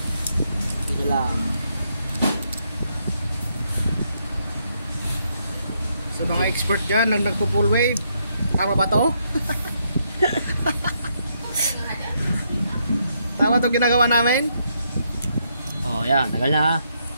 Ito lang. Sa mga expert dyan, nagpo-full wave. Tama ba to? Tama itong ginagawa namin? Oh, yan. Tagal na.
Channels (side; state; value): both; inverted; correlation -0.76